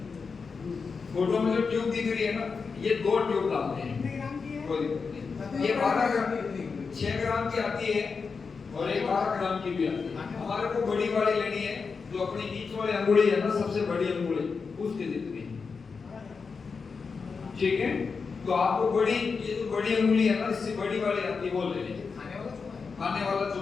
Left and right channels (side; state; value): right; quieter; 5.1 dB